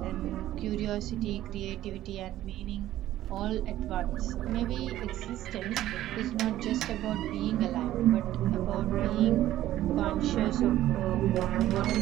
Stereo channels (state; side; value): quieter; left; 13.8 dB